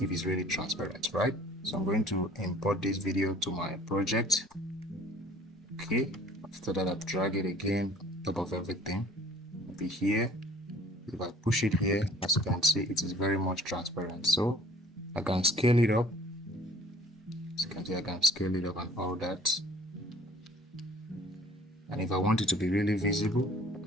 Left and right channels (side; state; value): both; normal; correlation 0.51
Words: it's really transparent, right? So I'm going to import this video to my project. Okay, after that I drag it again on top of everything. Maybe here, if I push it here, as you can see, it is very much transparent. So I can scale it up. As you can see, I can scale it up and all that. And if I want it to be really visible, I